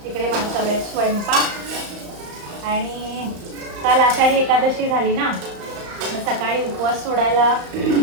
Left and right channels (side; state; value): left; late; 35 ms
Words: इकडे माझा चालू आहे स्वयंपाक. आणि काल आषाढी एकादशी झाली ना, मग सकाळी उपवास सोडायला